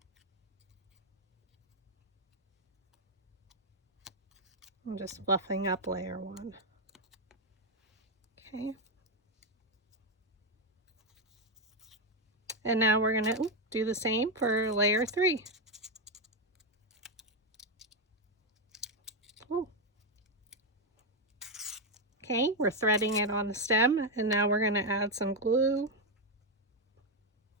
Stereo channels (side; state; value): both; normal; correlation 0.05